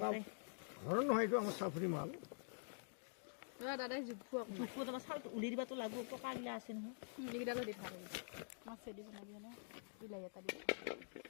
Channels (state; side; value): silent; right; digital silence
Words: ঘৰৰ নহয় এইটো আমাৰ চাফৰি মাল দাদাই জোখো তোমাৰ চাউলটো উলিয়াই দিবাতো লাগব পকাগিলা আছে নহয় এইকেইটা লৈ দি ভাল মাছে দিব লাগে ন বিলাহী এটা দিব